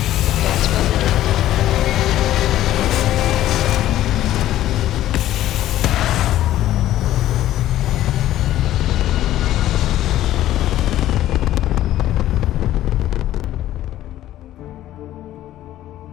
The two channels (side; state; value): right; quieter; 13.5 dB